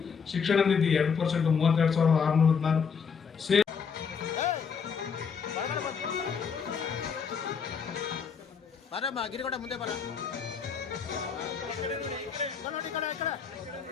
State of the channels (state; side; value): quieter; right; 6.2 dB